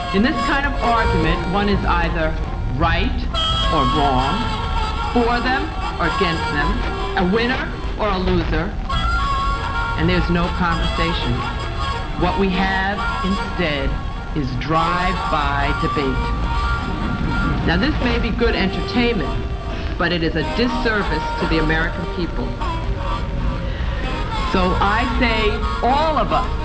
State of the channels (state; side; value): identical; both; correlation 1.00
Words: in this kind of argument, one is either right or wrong, for them or against them, a winner or a loser, and there's no conversation. What we have instead is drive-by debate. Now, this may be good entertainment, but it is a disservice to the American people. So I say all of